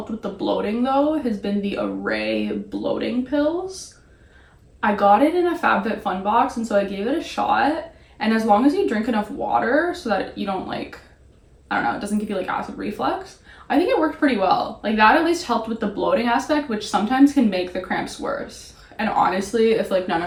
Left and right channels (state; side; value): identical; both; correlation 1.00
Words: with the bloating though has been the Array bloating pills. I got it in a FabFitFun box, and so I gave it a shot. And as long as you drink enough water so that you don't like, I don't know, it doesn't give you like acid reflux, I think it worked pretty well. Like, that at least helped with the bloating aspect, which sometimes can make the cramps worse. And honestly, if like none